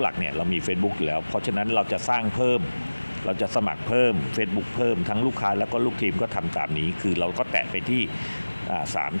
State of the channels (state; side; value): inverted; both; correlation -1.00